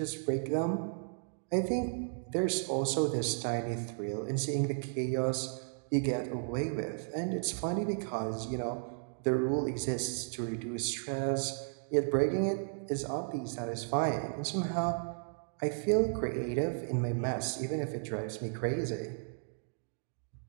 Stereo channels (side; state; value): left; silent; digital silence